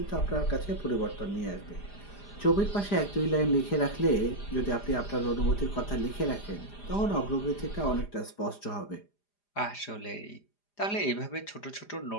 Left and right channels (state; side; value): late; right; 4.9 ms